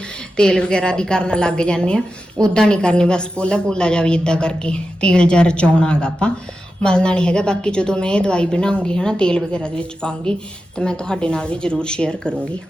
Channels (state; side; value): normal; both; correlation 0.91